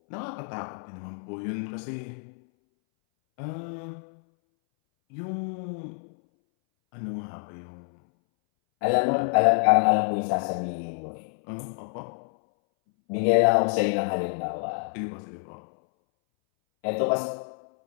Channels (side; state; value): right; silent; 60 dB below the other